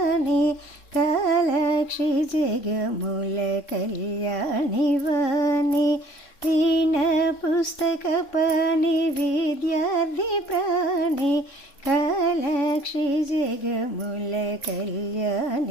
కాలాక్షి జగముల కళ్యాణి వాణి వీణ పుస్తక పాణి విద్యార్థి ప్రాణి కాలాక్షి జగముల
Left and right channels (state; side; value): late; right; 3.6 ms